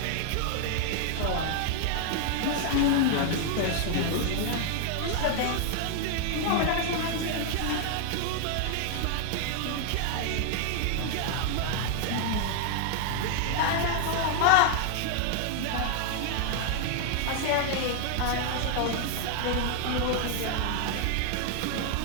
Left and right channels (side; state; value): both; different; correlation 0.00